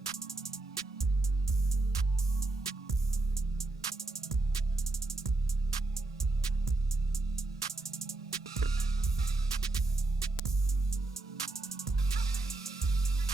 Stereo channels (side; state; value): left; quieter; 3.2 dB